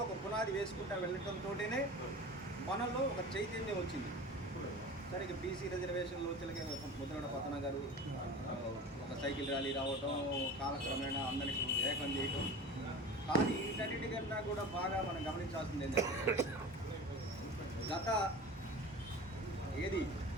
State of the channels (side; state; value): both; normal; correlation 0.35